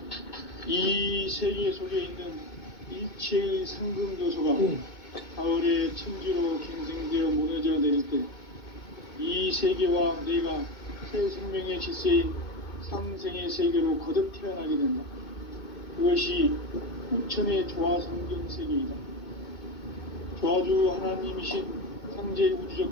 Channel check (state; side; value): late; right; 2.2 ms